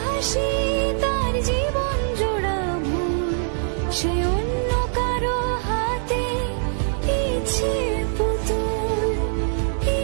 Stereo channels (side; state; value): left; silent; digital silence